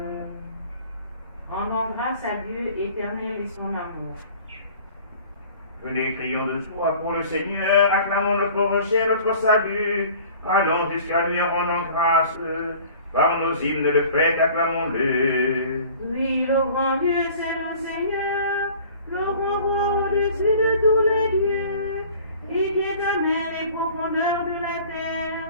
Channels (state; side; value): inverted; both; correlation -0.47